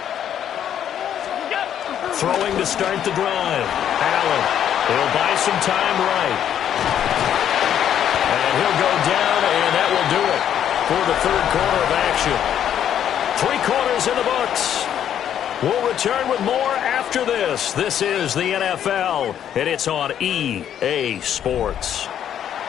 Throwing to start the drive. Allen. He'll buy some time right. And he'll go down, and that will do it for the 3rd quarter of action. 3 quarters in the books. We'll return with more after this. This is the NFL, and it's on EA Sports.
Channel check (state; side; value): quieter; right; 9.8 dB